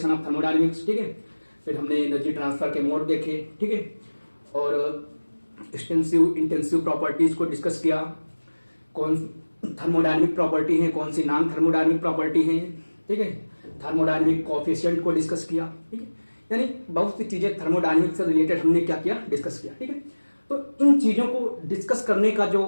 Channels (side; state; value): both; inverted; correlation -1.00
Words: of thermodynamics. ठीक है, फिर हमने एनर्जी ट्रांसफर के मोड देखे। ठीक है, और एक्सटेंसिव इंटेंसिव प्रॉपर्टीज को डिस्कस किया। कौन थर्मोडायनेमिक प्रॉपर्टी है, कौन सी नॉन थर्मोडायनेमिक प्रॉपर्टी है। ठीक है, थर्मोडायनेमिक कोएफिशिएंट को डिस्कस किया। ठीक है, यानी बहुत सी चीजें थर्मोडायनेमिक्स से रिलेटेड हमने क्या किया, डिस्कस किया। ठीक है, तो इन चीजों को डिस्कस करने का